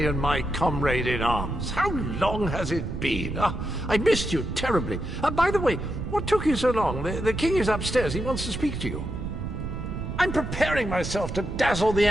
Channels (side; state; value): right; noise; rumble, 6 dB below the sound